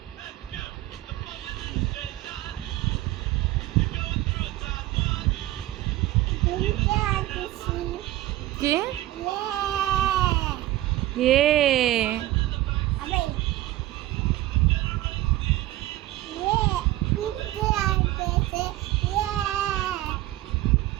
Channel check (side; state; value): left; quieter; 15.9 dB